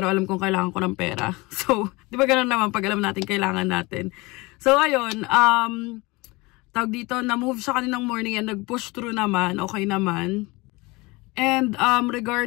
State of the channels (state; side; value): quieter; right; 23.9 dB